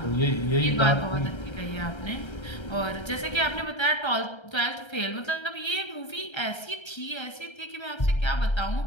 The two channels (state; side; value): late; right; 1.3 ms